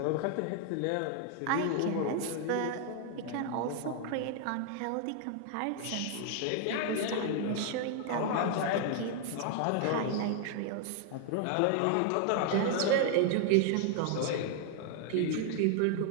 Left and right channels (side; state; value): both; different; correlation 0.00